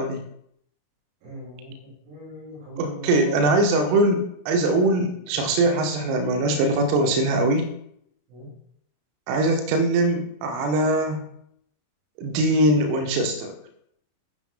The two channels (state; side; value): late; left; 33 ms